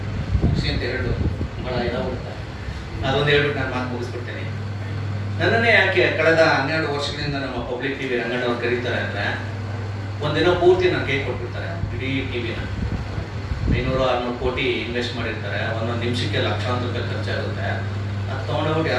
ಮುಗಿಸಿ ಅಂತ ಎರಡು ಬಹಳ ಇದಾಗ್ಬಿಡುತ್ತೆ, ಅದೊಂದು ಹೇಳ್ಬಿಟ್ಟು ನಾನು ಮಾತು ಮುಗಿಸ್ಬಿಡ್ತೇನೆ. ನನ್ನನ್ನೇ ಯಾಕೆ ಕಳೆದ 12 ವರ್ಷಗಳಿಂದ ನಮ್ಮ ಪಬ್ಲಿಕ್ ಟಿವಿ ರಂಗಣ್ಣವ್ರು ಕರೀತಾರೆ ಅಂದ್ರೆ ಒಂದಿನ ಪೂರ್ತಿ ನಾನು ಕೈ ಕೊಟ್ಬಿಡ್ತಾರೆ. ಇಡೀ ಟಿವಿನ 500-600 ಕೋಟಿ ಇನ್ವೆಸ್ಟ್ ಮಾಡಿರ್ತಾರೆ, ಒಂದೊಂದು ನಿಮಿಷಕ್ಕೆ ಲಕ್ಷಾಂತರ ರೂಪಾಯಿ ಖರ್ಚಾಗುತ್ತೆ. ಅದು ತೊಗೊಂಡೋಗ್ಬಿಟ್ಟು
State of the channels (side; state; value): both; identical; correlation 1.00